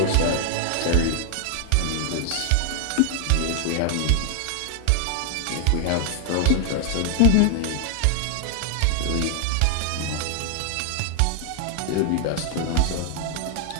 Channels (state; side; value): different; both; correlation 0.00